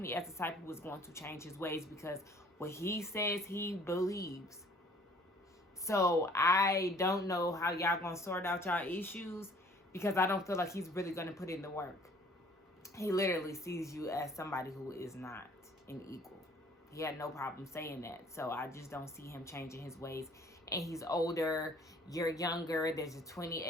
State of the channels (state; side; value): normal; both; correlation 0.55